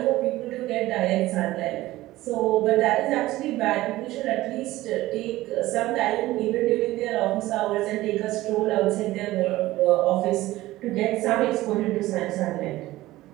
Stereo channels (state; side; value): quieter; left; 17.0 dB